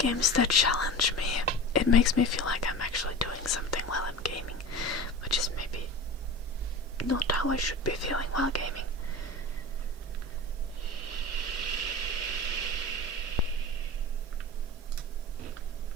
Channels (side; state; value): both; normal; correlation 0.31